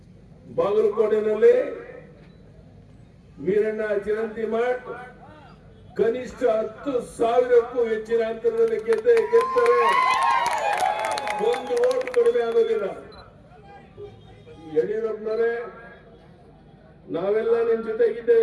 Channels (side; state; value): both; identical; correlation 1.00